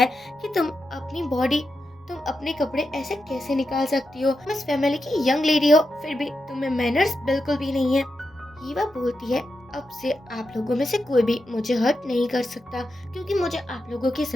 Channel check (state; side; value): normal; both; correlation 0.88